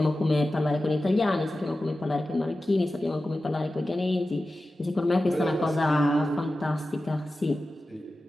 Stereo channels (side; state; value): both; normal; correlation 0.94